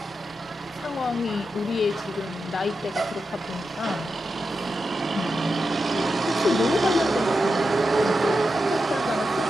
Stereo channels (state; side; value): normal; both; correlation 0.89